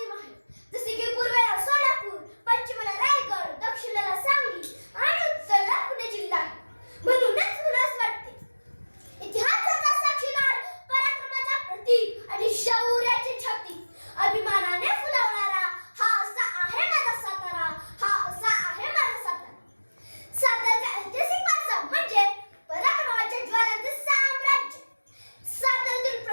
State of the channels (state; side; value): inverted; both; correlation -1.00